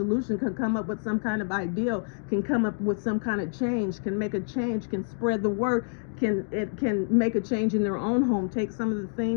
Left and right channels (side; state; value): right; silent; digital silence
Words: can come up with some kind of ideal, can come up with some kind of change, can make a change, can spread the word, can make a change in their own home, take some of the